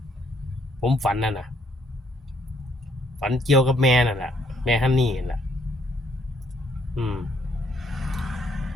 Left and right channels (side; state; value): both; normal; correlation 0.69